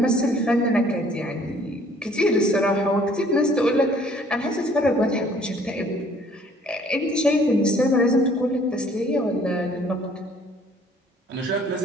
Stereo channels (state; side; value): normal; both; correlation 0.58